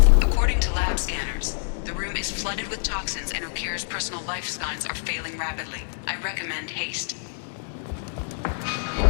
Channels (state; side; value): silent; right; digital silence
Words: According to lab scanners, the room is flooded with toxins and Okeer's personal life signs are failing rapidly. I recommend haste.